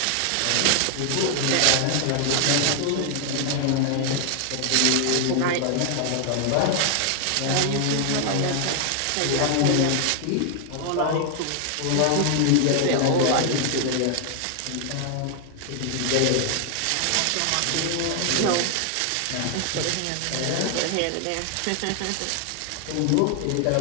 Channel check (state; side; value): different; both; correlation 0.00